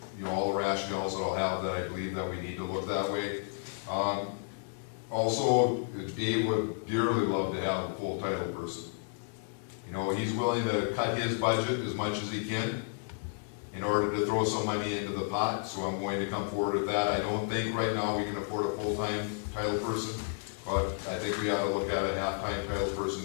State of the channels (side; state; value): right; silent; 56 dB below the other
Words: all the rationales that I'll have that I believe that we need to look that way. Also, Dave would dearly love to have a full title person. He's willing to cut his budget as much as he can in order to throw some money into the pot, so I'm going to come forward with that. I don't think right now we can afford a full-time title person, but I think we ought to look at a half-time title